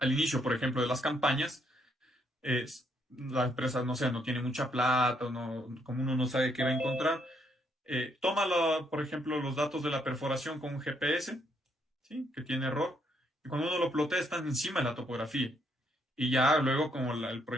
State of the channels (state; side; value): normal; both; correlation 0.72